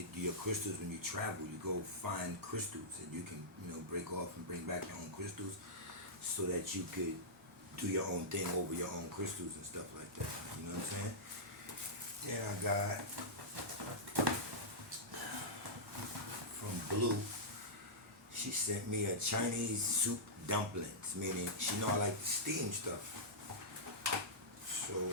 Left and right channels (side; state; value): both; normal; correlation -0.12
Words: your crystals when you travel. You go find crystals, and you can, break off and bring back your own crystals, so that you could do your own thing over your own crystals and stuff like that. You know what I'm saying? Then I got from Blue. She sent me a Chinese soup dumplings, meaning she know I like to steam stuff. So.